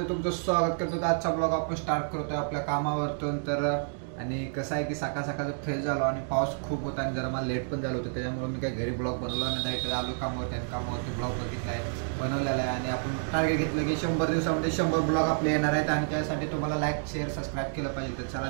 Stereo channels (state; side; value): silent; left; digital silence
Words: तुमचं स्वागत करतो. आजचा ब्लॉग आपण स्टार्ट करतोय आपल्या कामावरतून. तर आणि कसं आहे की सकाळ सकाळचं फ्रेश झालो आणि पाऊस खूप होता आणि जरा मला लेट पण झालं होतं, त्याच्यामुळे मी काही घरी ब्लॉग बनवला नाही. डायरेक्ट आलो कामावरती आणि कामावरती ब्लॉग बघितला आहे, बनवलेला आहे. आणि आपण टार्गेट घेतलं की 100 दिवसामध्ये 100 ब्लॉग आपले येणार आहेत आणि त्यासाठी तुम्हाला लाईक शेअर सबस्क्राईब केलं पाहिजे. तर